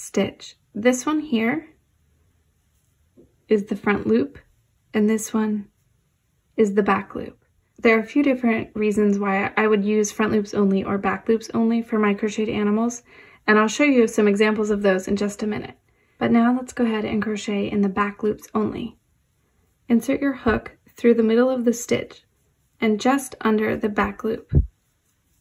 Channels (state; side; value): identical; both; correlation 1.00